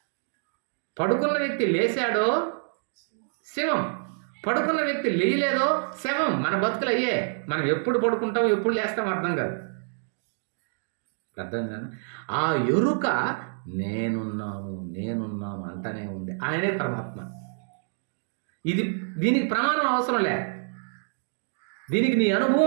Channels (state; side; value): silent; left; digital silence